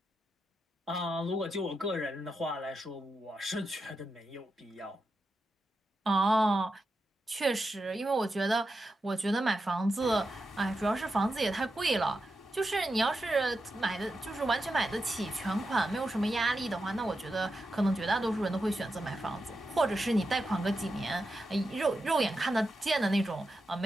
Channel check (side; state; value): both; normal; correlation 0.88